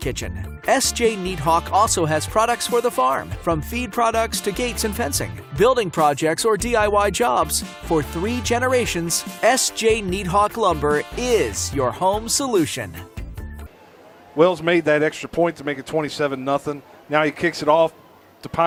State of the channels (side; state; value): both; identical; correlation 1.00